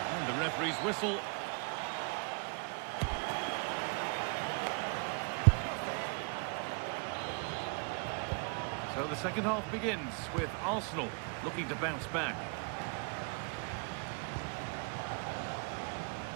The referee's whistle. So the second half begins with Arsenal looking to bounce back.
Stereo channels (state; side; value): quieter; left; 36.3 dB